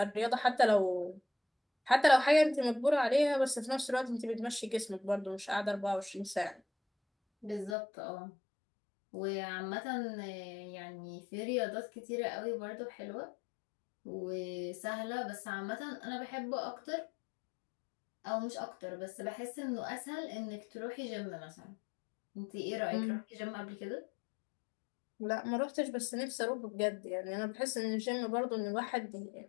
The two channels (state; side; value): drops out; right; at 7.8 s